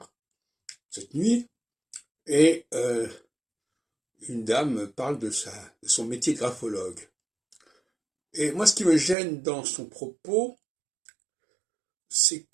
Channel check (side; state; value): left; drops out; at 9.2 s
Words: cette nuit, et une dame parle de son métier de graphologue. Et moi, ce qui me gêne dans son propos, c'est